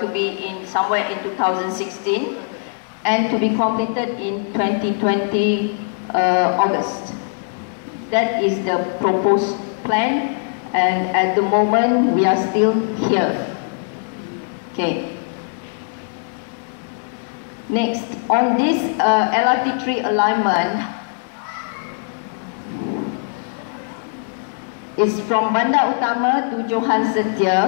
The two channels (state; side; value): silent; right; digital silence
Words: to be in somewhere in 2016 and to be completed in 2020 August. That is the proposed plan. And at the moment, we are still here. Okay. Next, on this LRT3 alignment, is from Bandar Utama to Johan